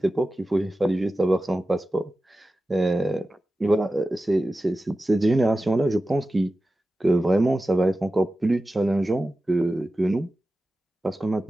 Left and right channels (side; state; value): both; normal; correlation 0.94